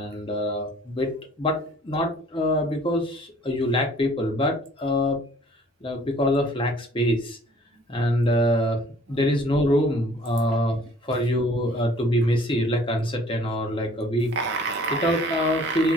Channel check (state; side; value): normal; both; correlation 0.54